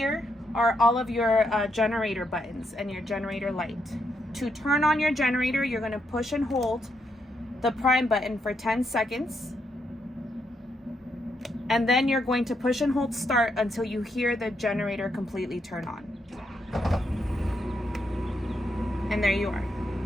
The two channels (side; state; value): both; normal; correlation 0.78